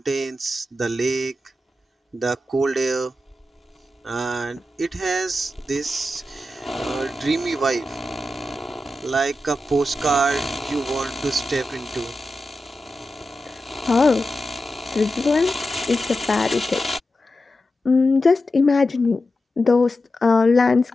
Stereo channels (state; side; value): normal; both; correlation 0.91